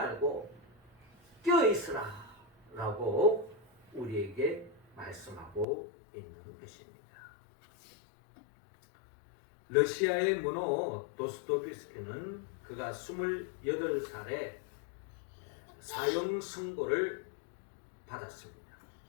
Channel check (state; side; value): drops out; right; at 5.7 s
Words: 깨어 있으라 라고 우리에게 말씀하고 있는 것입니다. 러시아의 문호 도스토옙스키는 그가 28살에 사형 선고를 받았습니다.